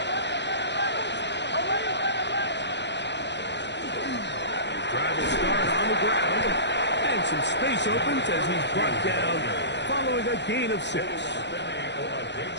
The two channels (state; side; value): late; right; 0.51 ms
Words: brought down following a gain of 6.